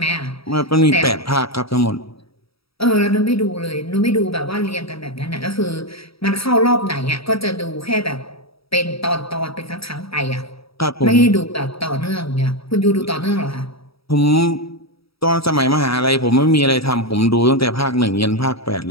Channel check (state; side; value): late; right; 0.76 ms